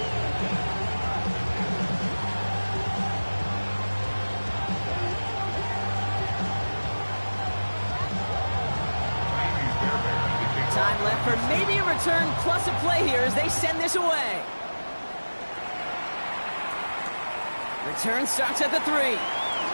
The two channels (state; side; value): inverted; both; correlation -1.00